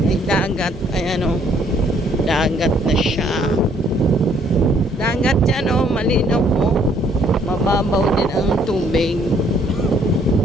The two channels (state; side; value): normal; both; correlation 0.64